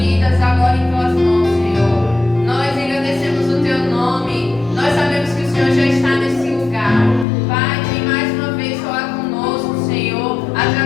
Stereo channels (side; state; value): right; drops out; at 7.2 s